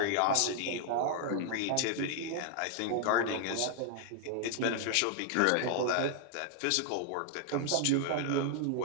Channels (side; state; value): both; different; correlation 0.00